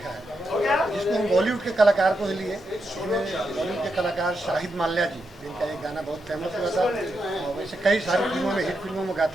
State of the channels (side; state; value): both; normal; correlation 0.84